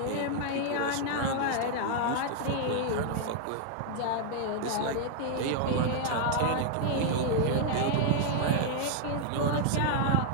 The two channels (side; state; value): both; different; correlation 0.00